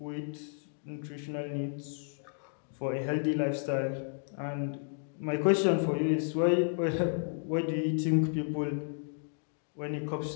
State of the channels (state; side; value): silent; right; digital silence